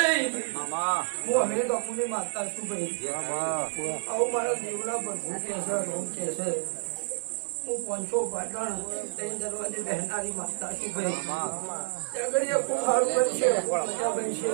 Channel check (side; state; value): left; silent; digital silence